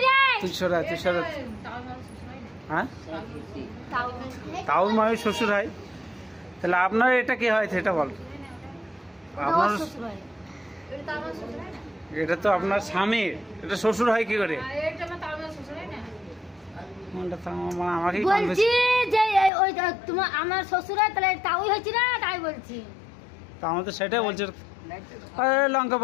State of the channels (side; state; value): right; drops out; at 19.5 s